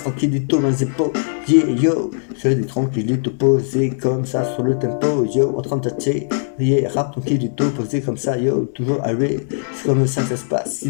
tranquillito dans les épaules, yeah yo, j'ai des tranquillito posés comme ça sur le tempo, yo, en train de tâter, yeah, rap tranquillito posé comme ça, yo, toujours arrêt, c'est comme ça que ça se passe, si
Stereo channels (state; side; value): silent; right; digital silence